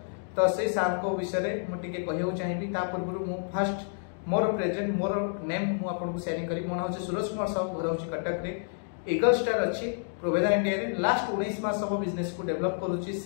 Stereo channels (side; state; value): right; silent; digital silence